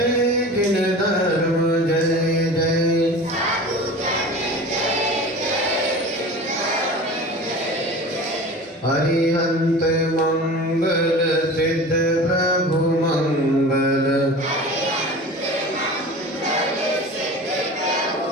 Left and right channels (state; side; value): normal; both; correlation 0.36